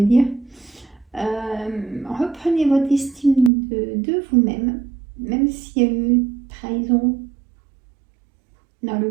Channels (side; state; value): left; drops out; at 3.5 s